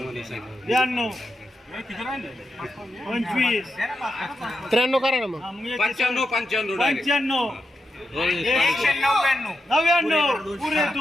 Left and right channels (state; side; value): normal; both; correlation 0.86